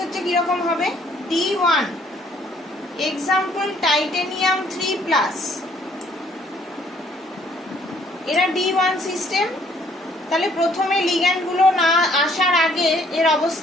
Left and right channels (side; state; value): both; normal; correlation 0.63